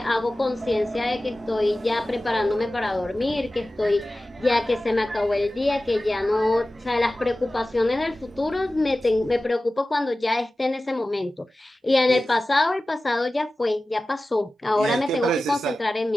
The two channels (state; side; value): normal; both; correlation 0.96